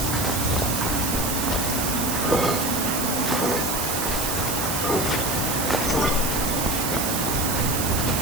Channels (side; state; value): right; noise; hiss, 2 dB below the sound